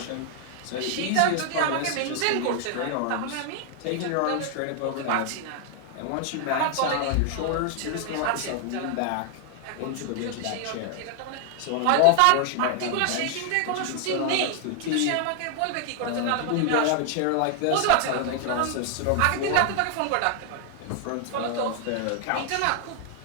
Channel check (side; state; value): both; different; correlation 0.00